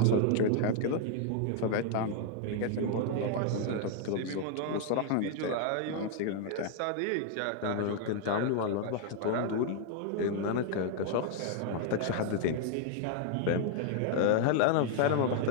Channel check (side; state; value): both; different; correlation 0.00